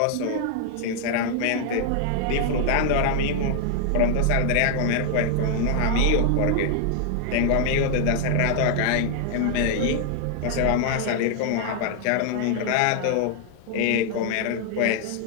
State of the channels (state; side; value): different; both; correlation 0.00